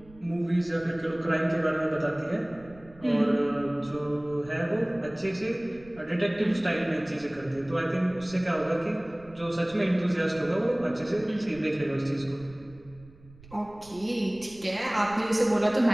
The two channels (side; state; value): right; noise; rumble, 23 dB below the sound